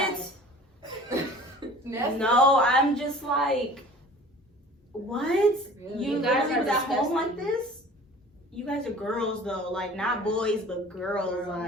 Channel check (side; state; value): both; normal; correlation 0.45